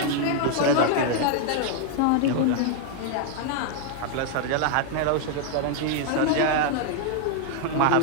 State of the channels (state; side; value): different; both; correlation 0.00